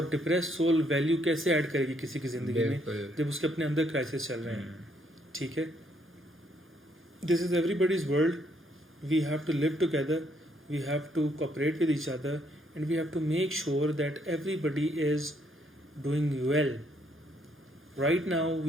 डिप्रेस्ड सोल वैल्यू कैसे ऐड करेगी किसी की ज़िंदगी में बिल्कुल। जब उसके अपने अंदर क्राइसिस चल रहे हैं। ठीक है, this is everybody's world, we have to live together, we have to cooperate with each other, and we have to make sure that everybody is doing well. Right now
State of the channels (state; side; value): normal; both; correlation 0.71